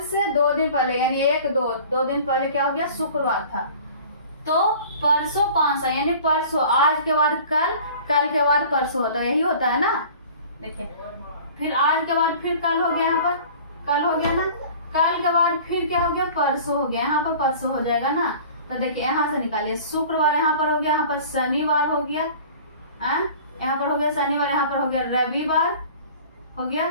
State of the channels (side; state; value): both; inverted; correlation -0.44